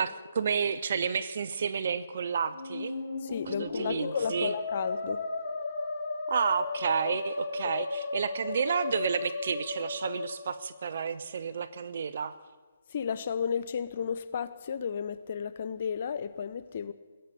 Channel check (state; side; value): inverted; both; correlation -0.75